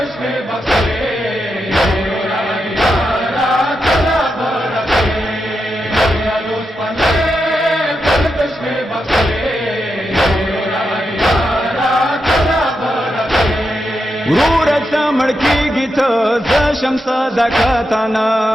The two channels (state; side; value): normal; both; correlation 0.86